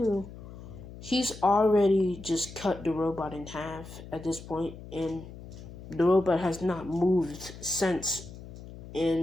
he's already just cut the robot in half at this point, and the robot has not moved since,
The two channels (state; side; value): noise; left; hum, 15 dB below the sound